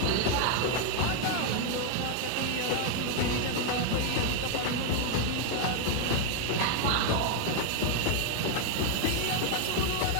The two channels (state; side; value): different; both; correlation 0.00